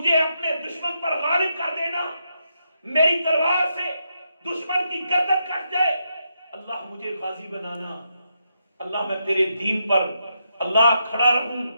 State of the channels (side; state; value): both; inverted; correlation -0.82